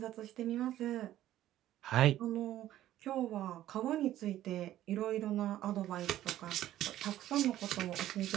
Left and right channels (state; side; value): quieter; left; 13.3 dB